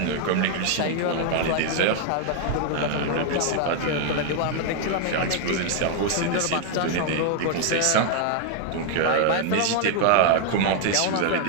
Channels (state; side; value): different; both; correlation 0.00